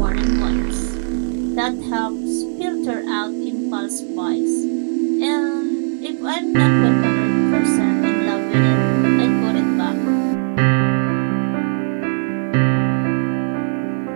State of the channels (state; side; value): silent; left; 63 dB below the other